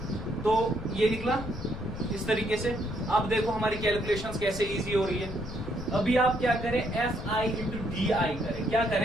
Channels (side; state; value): left; noise; rumble, 9 dB below the sound